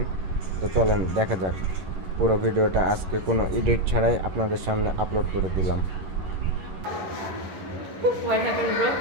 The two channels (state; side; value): late; left; 11 ms